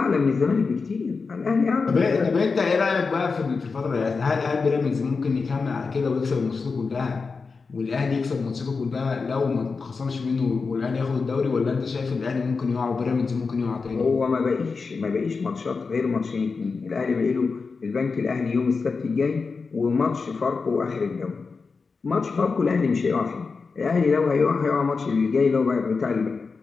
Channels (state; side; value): quieter; right; 4.7 dB